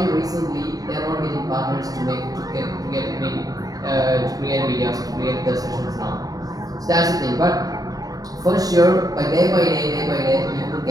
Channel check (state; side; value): late; left; 0.18 ms